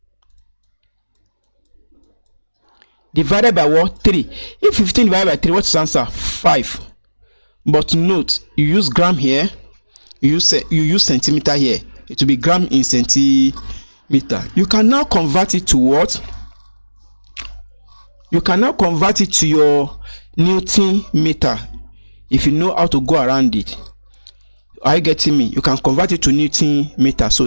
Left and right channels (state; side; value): inverted; both; correlation -1.00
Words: divided by what? 3. If 15 divided by 3, what's the answer? 5. But note, you use gram here, you use centimeter here. It will be gram in centimeter. You can now convert it to what? You can now convert it to your Newton meter if you know how to go around it. Are you getting me? You can convert it to Newton meter.